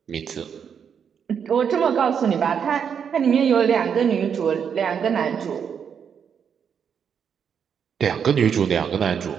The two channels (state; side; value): quieter; left; 7.4 dB